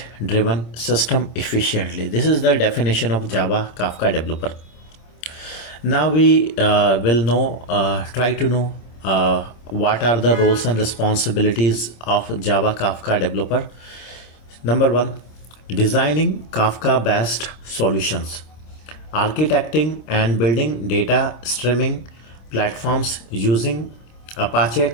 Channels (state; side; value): late; right; 26 ms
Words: driven system efficiently. This is the definition of Java Kafka developer. Now we will try to know what are the roles and responsibilities of Java Kafka developer. Number one, designing Kafka based solutions, architecting and building data streaming platforms using Apache